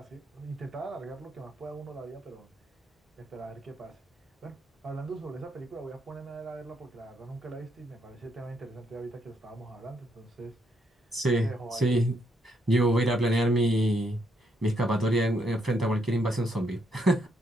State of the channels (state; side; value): normal; both; correlation 0.75